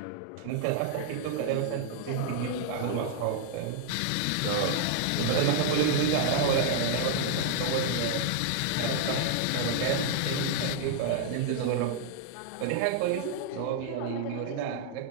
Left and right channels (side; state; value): both; different; correlation -0.01